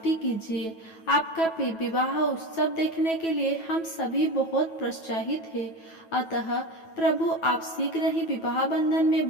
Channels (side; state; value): right; late; 9.2 ms